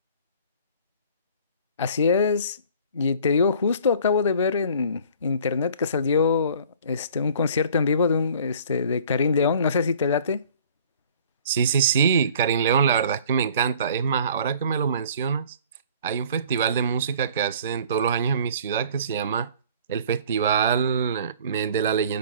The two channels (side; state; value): both; inverted; correlation -0.50